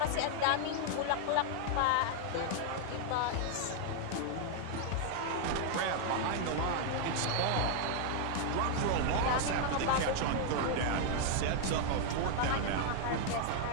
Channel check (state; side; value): different; both; correlation 0.00